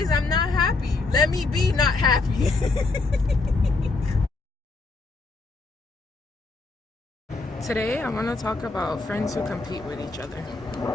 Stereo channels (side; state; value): right; quieter; 3.6 dB